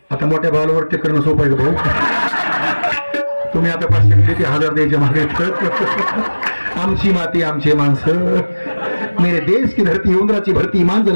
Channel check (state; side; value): inverted; both; correlation -1.00